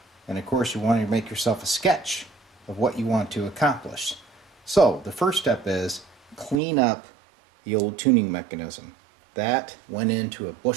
And of course, you want to make yourself a sketch of what you want to accomplish. So, the first step is clean up the old tuning mechanism. That went into a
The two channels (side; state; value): left; drops out; at 6.6 s